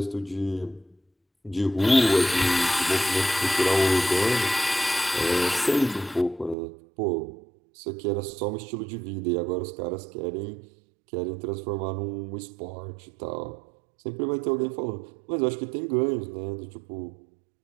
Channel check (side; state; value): left; drops out; at 6.6 s